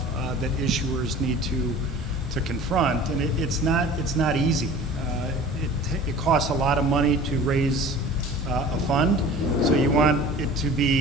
that issuers need to confront, and it's not easy. It costs a lot of money to raise a fund, so you want it to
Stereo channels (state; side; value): normal; both; correlation 0.42